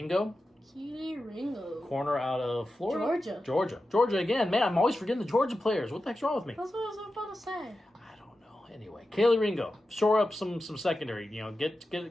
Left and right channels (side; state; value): both; normal; correlation 0.92